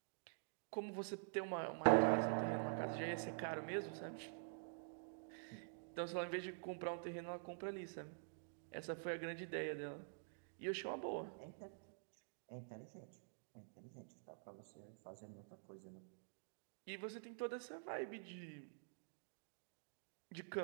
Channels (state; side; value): silent; left; digital silence